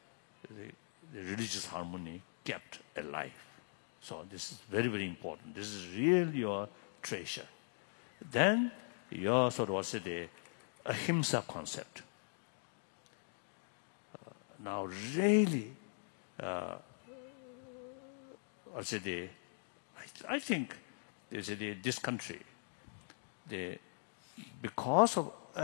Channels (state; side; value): silent; right; digital silence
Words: the religious harmony kept alive. So this is very, very important. This is really your treasure. Then your sort of the ahimsa concept. Now really, I think this country, because of